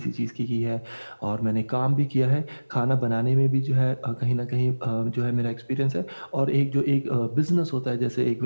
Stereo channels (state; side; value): inverted; both; correlation -1.00